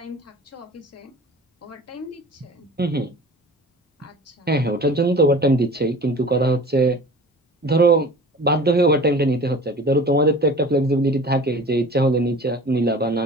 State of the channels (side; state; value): both; normal; correlation 0.41